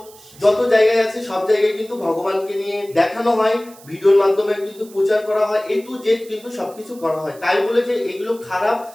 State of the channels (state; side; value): noise; right; hiss, 23 dB below the sound